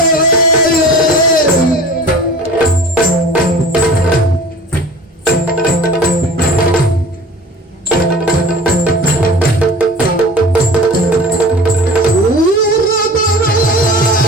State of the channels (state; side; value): normal; both; correlation 0.41